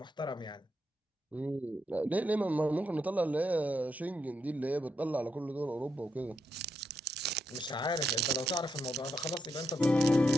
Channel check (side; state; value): both; normal; correlation 0.82